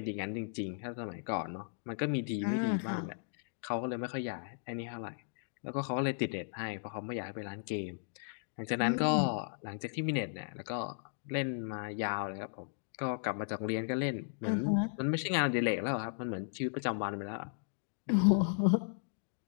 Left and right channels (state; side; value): silent; right; digital silence